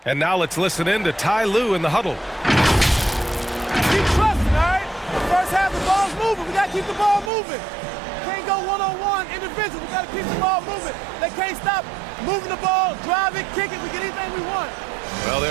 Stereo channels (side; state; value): left; drops out; at 7.3 s